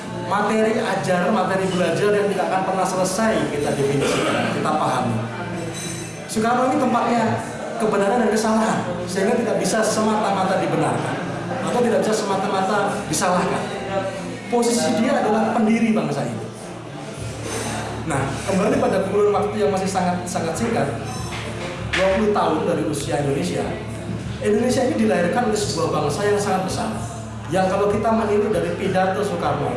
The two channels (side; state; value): both; identical; correlation 1.00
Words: materi ajar, materi belajar yang tidak akan pernah selesai kita definisikan, kita pahami. Soekarno ini tempatnya kebenaran dan kesalahan, sehingga tidak bisa semata-mata dibenarkan atau tidak bisa semata-mata disalahkan. Posisi dia adalah pendiri bangsa ini. Nah, kembali pada kurun waktu yang masih sangat singkat, 20 tahun dari usia Indonesia. Indonesia ini dilahirkan oleh sebuah bangsa yang sangat besar. Yang kalau kita meniru dari pidato Soekarno,